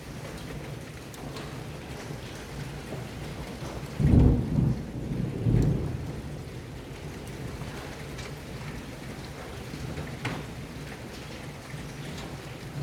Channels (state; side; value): identical; both; correlation 1.00